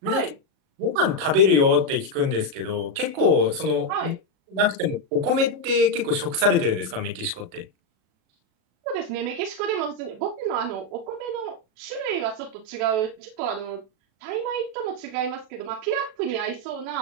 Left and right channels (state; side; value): late; left; 37 ms